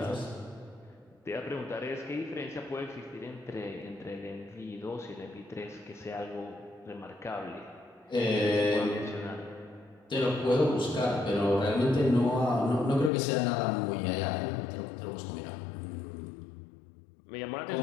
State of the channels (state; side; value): drops out; right; at 13.1 s